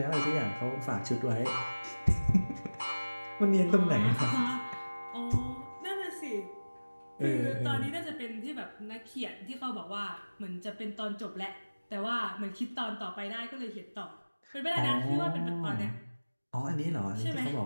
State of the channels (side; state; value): both; inverted; correlation -1.00